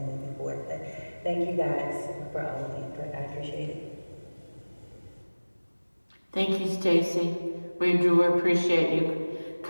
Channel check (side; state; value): both; inverted; correlation -1.00